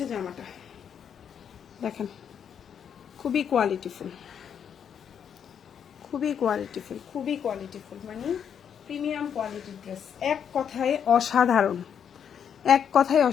জামাটা দেখেন, খুবই কোয়ালিটিফুল, খুবই কোয়ালিটিফুল, খুবই কোয়ালিটিফুল, মানে প্রিমিয়াম কোয়ালিটির ড্রেস। এক কথায় অসাধারণ, এক কথায়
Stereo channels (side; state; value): right; quieter; 8.1 dB